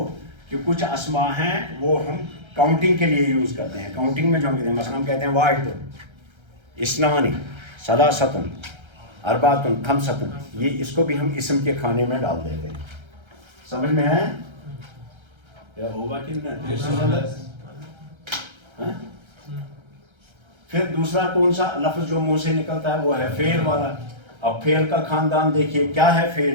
کہ کچھ اسماء ہیں وہ ہم کاؤنٹنگ کے لیے یوز کرتے ہیں. کاؤنٹنگ میں جو ہم کہتے ہیں، مثلا ہم کہتے ہیں واحد، اثنان، ثلاثۃ، اربعۃ، خمسۃ. یہ اس کو بھی ہم اسم کے کھانے میں ڈال دیتے ہیں. سمجھ میں ہے؟ کیا ہوگا کہ نہیں؟ پھر دوسرا کون سا لفظ جو منہ سے نکلتا ہے وہ ہے فعل والا. اب فعل کا خاندان دیکھیے کیا ہے.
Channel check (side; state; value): left; late; 1.3 ms